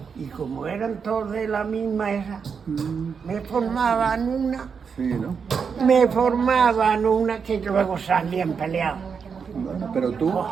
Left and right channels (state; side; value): quieter; left; 6.1 dB